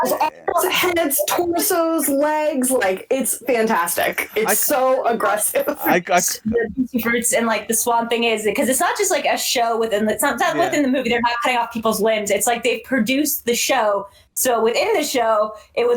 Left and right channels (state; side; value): identical; both; correlation 1.00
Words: heads, torsos, legs, like, it's fantastic. It's so aggressive. The Juicy Fruits and, like, the Swan thing is, because it's not just like a show within within the movie. They're not cutting off people's limbs. It's like they've produced the show. So within the show, it